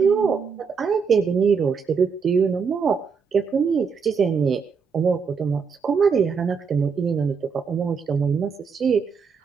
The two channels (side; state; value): left; quieter; 5.8 dB